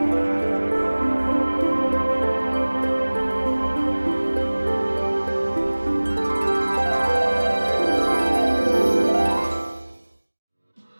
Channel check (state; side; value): inverted; both; correlation -1.00